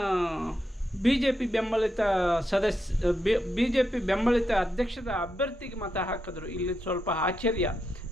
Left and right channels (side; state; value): both; normal; correlation 0.84